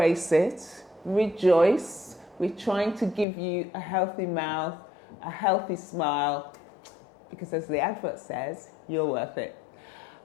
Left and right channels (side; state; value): right; drops out; at 3.2 s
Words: it, rejoice. We're trying to give you a healthy mouth, a healthy smile, because as the advert says, you're worth it.